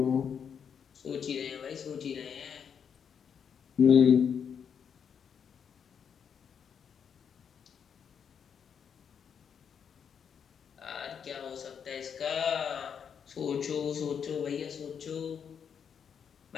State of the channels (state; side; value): quieter; right; 7.4 dB